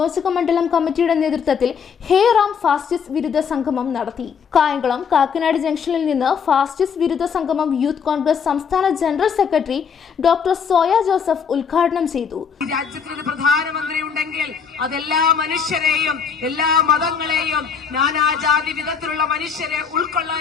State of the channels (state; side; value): quieter; right; 6.6 dB